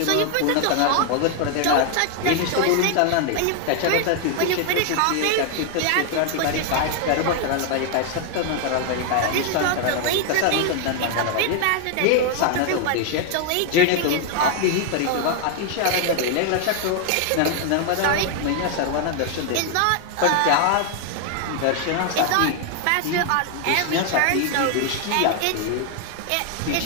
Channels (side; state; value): both; different; correlation 0.00